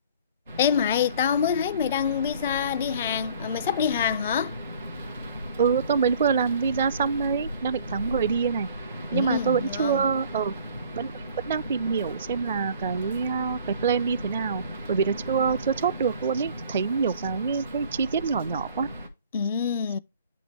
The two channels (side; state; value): both; inverted; correlation -0.51